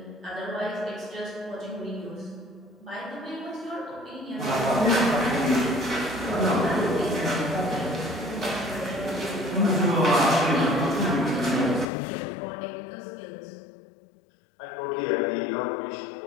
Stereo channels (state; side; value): drops out; right; at 11.9 s